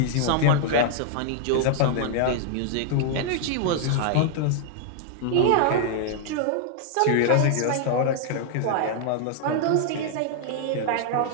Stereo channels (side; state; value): both; different; correlation -0.01